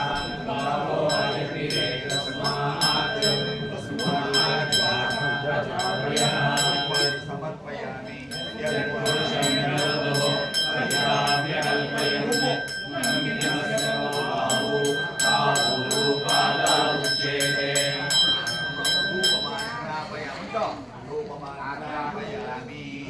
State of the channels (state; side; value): identical; both; correlation 1.00